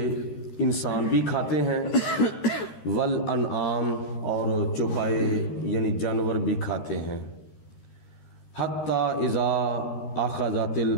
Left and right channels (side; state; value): right; late; 13 ms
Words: انسان بھی کھاتے ہیں، والانعام، اور چوپائے یعنی جانور بھی کھاتے ہیں، حتی اذا اخذت